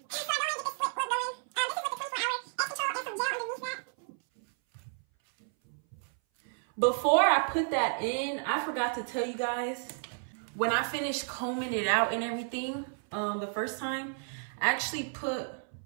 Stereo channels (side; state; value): left; silent; 57 dB below the other